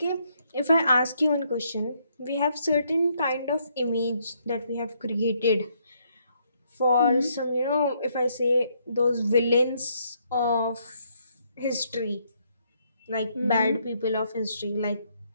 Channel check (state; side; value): inverted; both; correlation -0.73